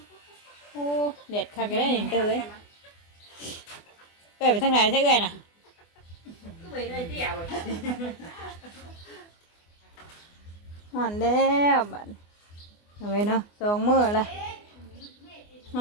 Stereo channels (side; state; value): right; late; 24 ms